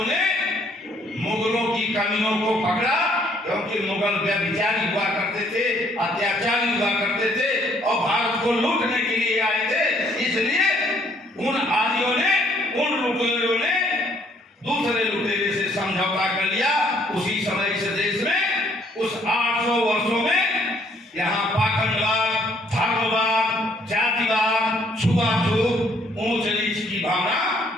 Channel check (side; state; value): both; normal; correlation 0.65